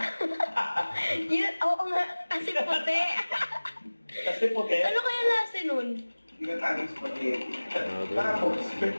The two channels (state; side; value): inverted; both; correlation -1.00